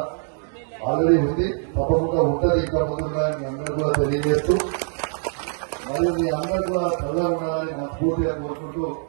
ఆల్రెడీ ఉంది, తప్పకుండా ఉంటుంది, ఇంకా ముందుగా మీ అందరూ కూడా తెలియజేస్తూ మరియు మీ అందరూ కూడా త్వరగా ఉండాలని మనస్ఫూర్తిగా కోరుకుంటూ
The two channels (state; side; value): silent; left; 57 dB below the other